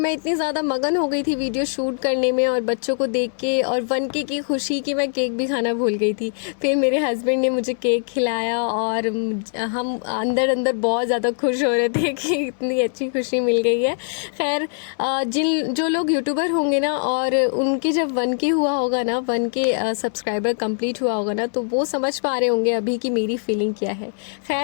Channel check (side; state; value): right; silent; digital silence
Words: इतनी ज़्यादा मगन हो गई थी वीडियो शूट करने में और बच्चों को देख के और 1K की खुशी कि मैं केक भी खाना भूल गई थी। फिर मेरे हस्बैंड ने मुझे केक खिलाया और हम अंदर बहुत ज़्यादा खुश हो रहे थे कि इतनी अच्छी खुशी मिल गई है। खैर जो लोग यूट्यूबर होंगे ना और उनके जब 1K हुआ होगा ना, 1K सब्सक्राइबर कंप्लीट हुआ होगा ना, तो वो समझ पा रहे होंगे अभी कि मेरी फीलिंग क्या है।